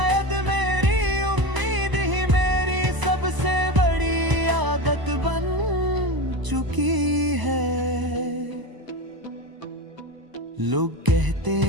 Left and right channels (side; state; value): left; late; 1.0 ms